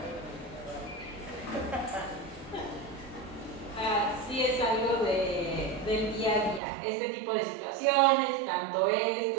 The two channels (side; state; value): left; drops out; at 6.6 s